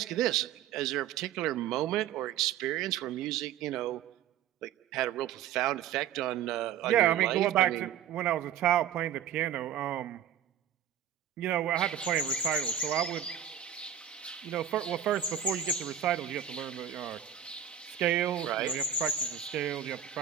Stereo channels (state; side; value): quieter; left; 9.5 dB